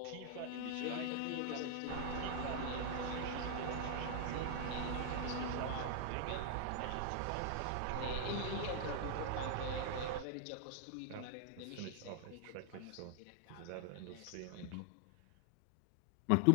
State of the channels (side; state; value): both; different; correlation 0.00